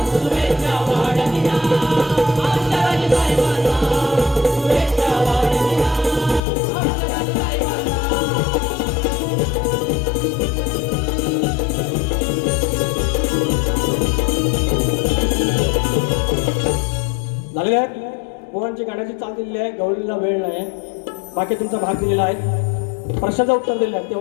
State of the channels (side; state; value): right; drops out; at 6.4 s